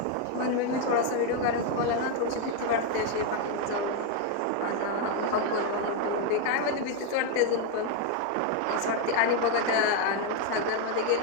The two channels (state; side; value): different; both; correlation 0.01